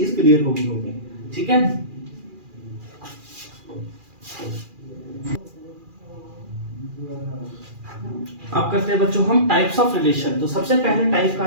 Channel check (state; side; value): late; left; 2.4 ms